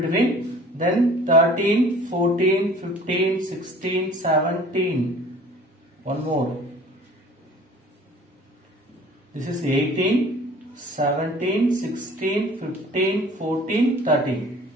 Then 13, 14, 15, 16, 17. One more. This is 18, 17, 16, 15, 14, 13.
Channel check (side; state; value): both; normal; correlation 0.48